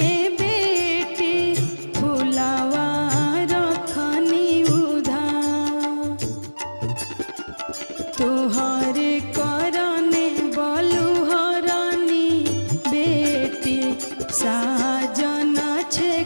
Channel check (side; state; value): both; inverted; correlation -1.00